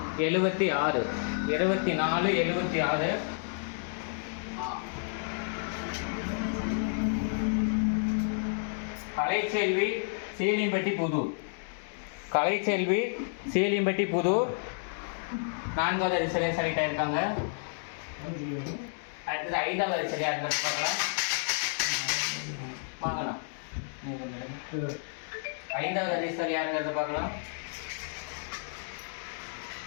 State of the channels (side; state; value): right; silent; digital silence